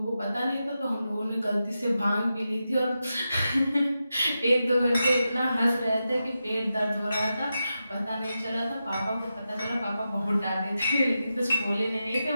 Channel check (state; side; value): inverted; both; correlation -0.90